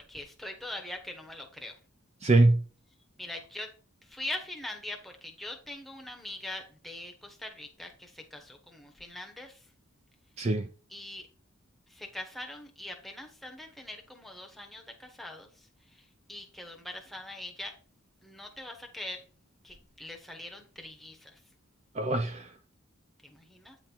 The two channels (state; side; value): normal; both; correlation 0.82